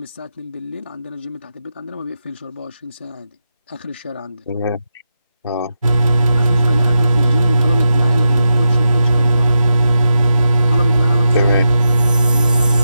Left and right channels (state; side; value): inverted; both; correlation -0.88